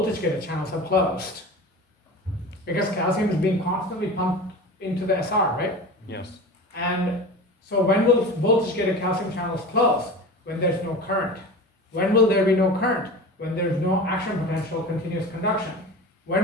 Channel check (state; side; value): normal; both; correlation 0.33